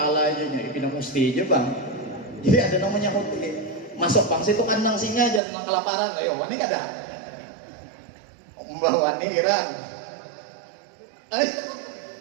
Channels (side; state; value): left; drops out; at 5.4 s